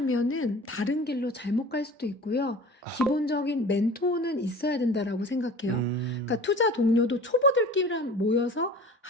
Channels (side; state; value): both; normal; correlation 0.40